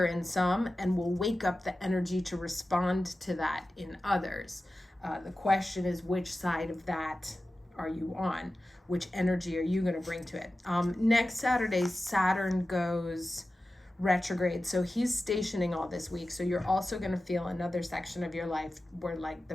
in some, and will wake up the energy to respond to that in others. The question is, which side of that are you on? Which energy are you going to bring to it? Next Saturday, Saturn goes retrograde, so he's stationing all this week. So you're also going to feel another section of your life where like the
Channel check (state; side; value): normal; both; correlation 0.94